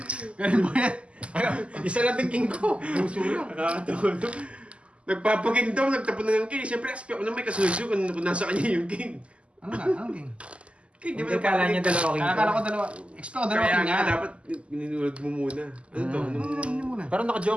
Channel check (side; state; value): left; late; 0.056 ms